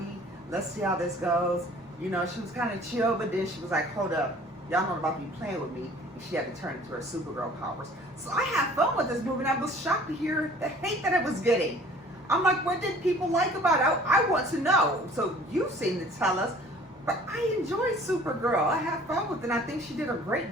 Let's see how this goes. You know, she was kind of chill, but then she was like, hold up. Y'all not about to be playing with me. And she had to turn into her Supergirl powers. So I had fun with this movie, and I was shocked to hear the hate that it was getting. I'm like, what did people like about it? I want to know. So you seem to tell us. But I enjoyed Supergirl. I had fun with it, and I think she did a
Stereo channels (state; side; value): normal; both; correlation 0.51